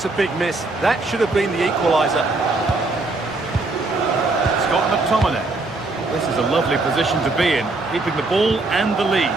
a big miss. That should have been the equaliser. Scott McTominay. This is a lovely position to be in, keeping the ball and the lead.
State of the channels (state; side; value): quieter; left; 3.3 dB